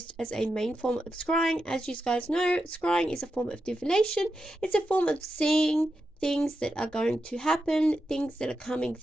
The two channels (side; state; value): both; normal; correlation 0.88